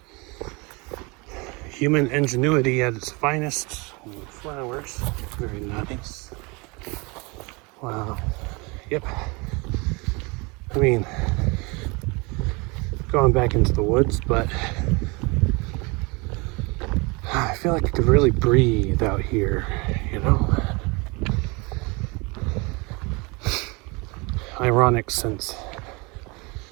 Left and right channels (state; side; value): quieter; left; 27.7 dB